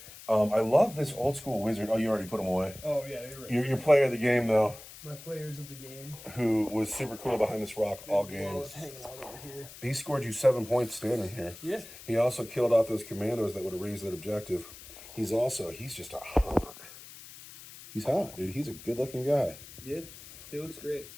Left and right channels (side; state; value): left; noise; hiss, 16 dB below the sound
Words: I love this old school wizard. Oh, you already put him away. Oh, yeah, you're right. Your player of the game, though. My players of the game. Who was super cool behind this rock all games. Hanging out over here. He scored you 7 points standing here. Yeah. He also killed off those commandos that would have raised that objective. He's just a hot. He's hot, dude. He's a good looking guy. Yeah, he looks great.